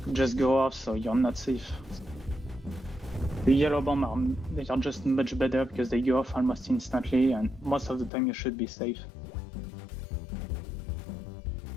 just go off, so you're not safe. The yellow bomb they are just much better because they go off almost instantly, and most of the time you should be safe.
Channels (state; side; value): drops out; right; at 8.1 s